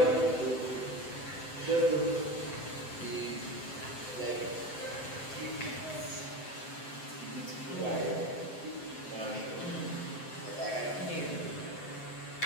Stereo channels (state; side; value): late; right; 7.8 ms